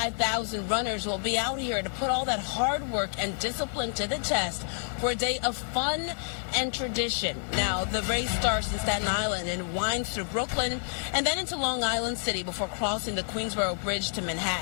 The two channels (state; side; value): silent; right; digital silence